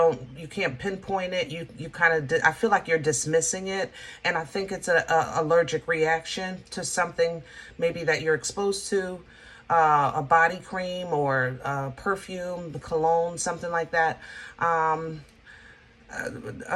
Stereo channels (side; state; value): both; identical; correlation 1.00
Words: you can't pinpoint it, you kind of, I feel like you're dismissing it, and I think it's a allergic reaction to something maybe that you're exposed to, a body cream or perfume, cologne, something like that.